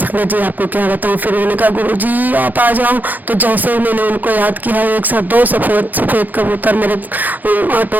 जी आपको क्या बताऊं। फिर उन्होंने कहा गुरु जी आप आ जाओ। तो जैसे ही मैंने उनको याद किया, एक साथ 2 सफेद कबूतर मेरे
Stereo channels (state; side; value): late; left; 0.084 ms